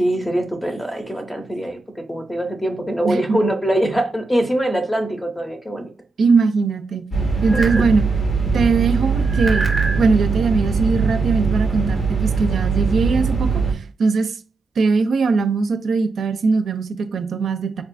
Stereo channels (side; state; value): left; quieter; 3.6 dB